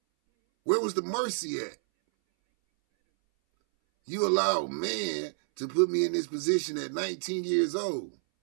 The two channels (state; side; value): silent; left; 58 dB below the other